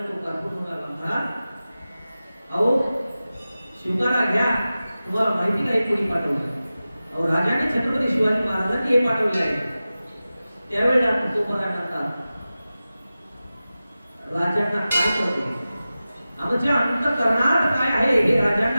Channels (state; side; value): inverted; both; correlation -0.95